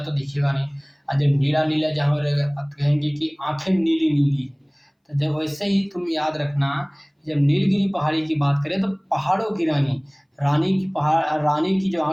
दिखेगा नहीं। और जब नीला नीला जहाँ रहेगा अब कहेंगे कि आंखें नीली नीली है। तो जब वैसे ही तुम याद रखना, जब नीलगिरी पहाड़ी की बात करें तो पहाड़ों की रानी, रानी की जो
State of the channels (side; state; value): both; identical; correlation 1.00